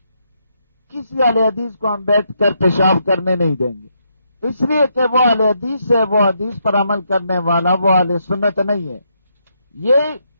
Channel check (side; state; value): both; inverted; correlation -0.78